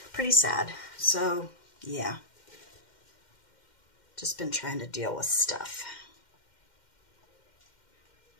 Pretty sad. So, yeah. Just been trying to deal with stuff.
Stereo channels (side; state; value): right; late; 2.1 ms